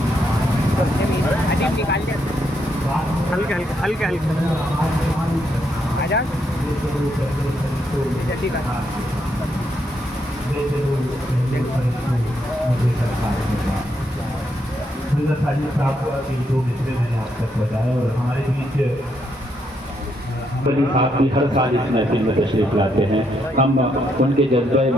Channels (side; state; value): both; normal; correlation 0.77